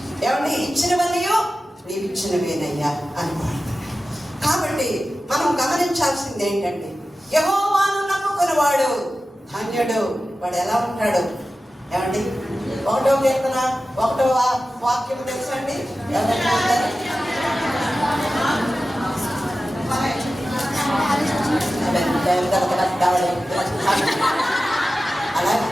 ఏమంటే ఇచ్చినవన్నీ నీవు ఇచ్చినవేనయ్యా అని పాడుతున్నాడు. కాబట్టి మనం గమనించాల్సింది ఏంటంటే, యెహోవాను నమ్ముకున్నవాడు ధన్యుడు. వాడు ఎలా ఉంటాడు? ఏమండి, 1వ కీర్తన 1వ వాక్యం తెలుసండి? అలా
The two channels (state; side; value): normal; both; correlation 0.94